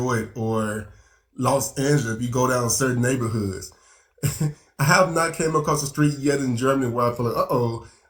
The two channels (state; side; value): identical; both; correlation 1.00